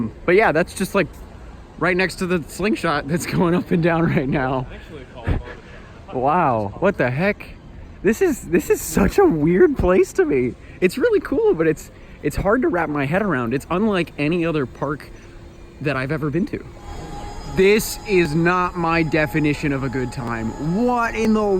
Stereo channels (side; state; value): both; identical; correlation 1.00